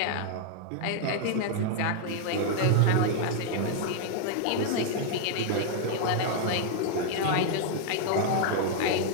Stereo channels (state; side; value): different; both; correlation 0.00